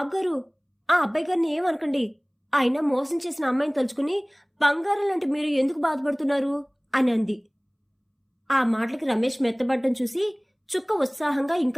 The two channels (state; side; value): identical; both; correlation 1.00